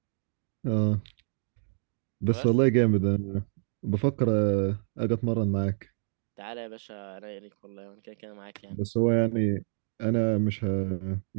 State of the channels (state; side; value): silent; left; digital silence